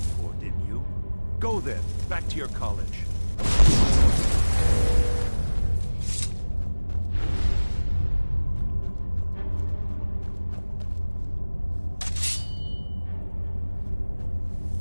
for, didn't you? Go then, back to your college.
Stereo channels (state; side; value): inverted; both; correlation -1.00